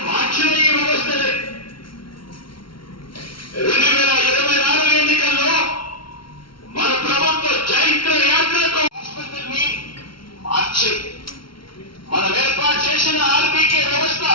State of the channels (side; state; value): right; late; 0.74 ms